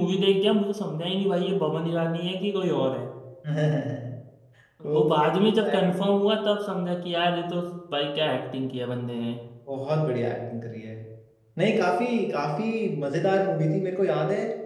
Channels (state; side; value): identical; both; correlation 1.00